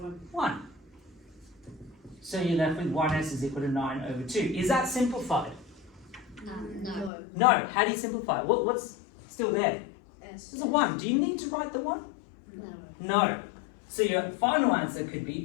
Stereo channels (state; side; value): drops out; right; at 7.1 s